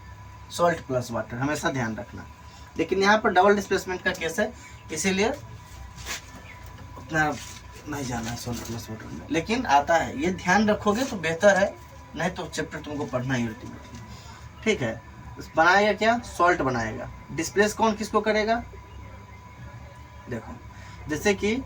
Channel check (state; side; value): identical; both; correlation 1.00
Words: सॉल्ट प्लस वाटर, हमेशा ध्यान रखना। लेकिन यहाँ पर डबल डिस्प्लेसमेंट का केस है, इसीलिए उतना नहीं जाना है सॉल्ट प्लस वाटर में, लेकिन आता है, ये ध्यान रखोगे तो बेहतर है, नहीं तो चैप्टर तुमको पढ़ना ही अल्टीमेटली। ठीक है, बनाएगा क्या, सॉल्ट बनाएगा। डिस्प्लेस कौन किसको करेगा, देखो जैसे कि